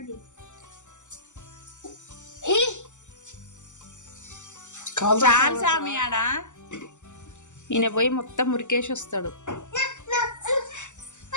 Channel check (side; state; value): right; late; 0.84 ms